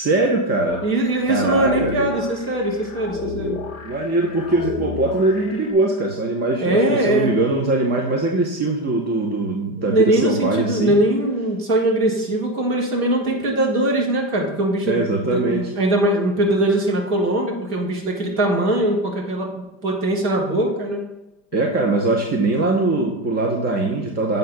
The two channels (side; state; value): right; late; 5.0 ms